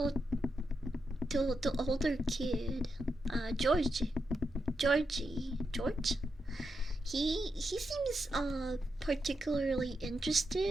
The older kid, George, he seems particularly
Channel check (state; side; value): normal; both; correlation 0.84